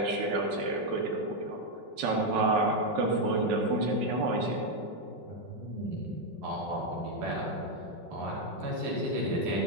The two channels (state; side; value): late; left; 5.4 ms